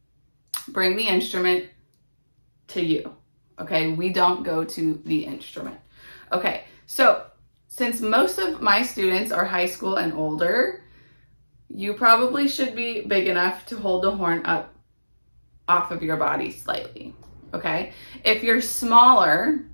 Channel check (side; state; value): both; inverted; correlation -1.00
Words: bring the instrument to you. Okay, we don't go to the instrument. Okay, so since most of my students are high school and older, you probably should be big enough to hold the horn up off of your body slightly. Okay, if you're smaller,